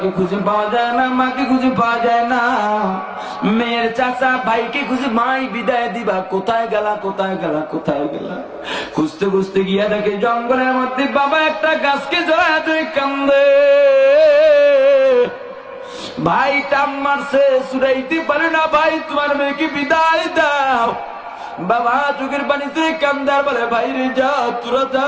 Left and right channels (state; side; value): identical; both; correlation 1.00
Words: খুঁজে পাওয়া যায় না, মাকে খুঁজে পাওয়া যায় না, মেয়ের চাচা ভাইকে খুঁজে মাই বিদায় দিবা, কোথায় গেলা কোথায় গেলা কোথায় গেলা? খুঁজতে খুঁজতে গিয়া দেখে জঙ্গলের মধ্যে বাবা একটা গাছকে জড়ায় ধরে কান্দে। ভাই টান মারছে, সুরাইতে পারে না, ভাই তোমার মেয়েকে বিদায় দাও। বাবা চোখের পানি তুই কান্দার বলে, বাইরে যা, তোরা যা,